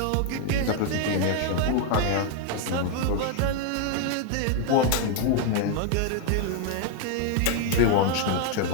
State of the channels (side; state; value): both; different; correlation 0.00